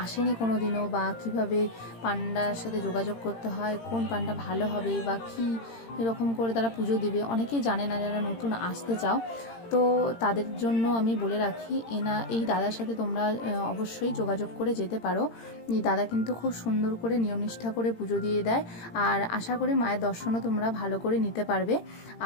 আসেনি কোনো দিনও, বা কিভাবে পান্ডার সাথে যোগাযোগ করতে হয়, কোন পান্ডা ভালো হবে বা কী এরকম করে তারা পুজো দেবে, অনেকেই জানে না যারা নতুন আসতে চাও। তো তাদের জন্য আমি বলে রাখি, এই দাদার সাথে তোমরা অবশ্যই যোগাযোগ করে যেতে পারো। এই দাদা কিন্তু খুব সুন্দর করে নিয়মনিষ্ঠা করে পুজো দিয়ে দেয়, আর আশা করি মায়ের দর্শনও তোমরা ভালো করে নিতে পারবে।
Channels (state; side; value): late; right; 18 ms